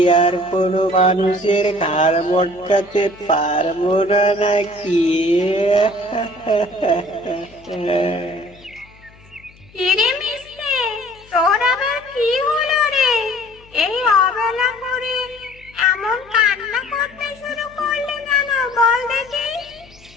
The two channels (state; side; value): noise; left; hum, 26 dB below the sound